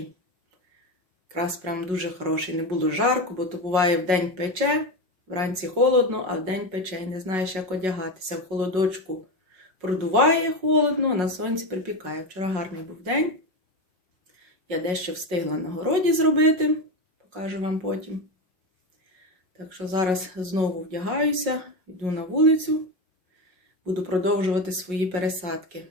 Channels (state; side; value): late; left; 5.5 ms